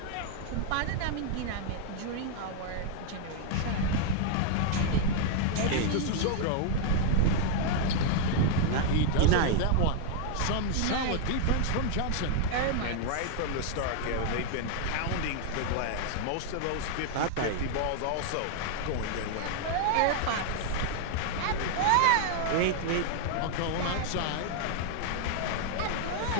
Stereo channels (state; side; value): different; both; correlation 0.00